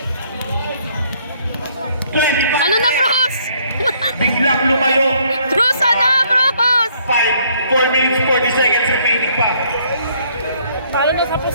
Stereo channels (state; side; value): inverted; both; correlation -0.65